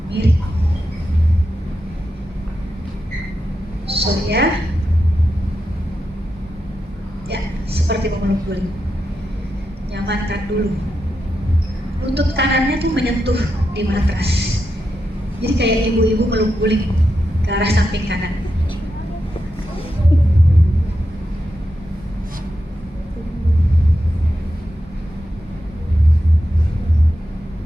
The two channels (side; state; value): both; normal; correlation 0.87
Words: mirip. Ya, seperti memeluk guling. Nyamankan dulu. Lutut kanannya tuh menyentuh di matras. Jadi kayak ibu-ibu meluk guling ke arah samping kanan.